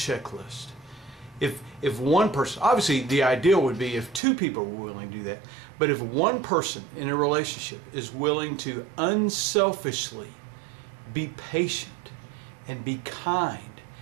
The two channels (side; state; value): left; drops out; at 4.2 s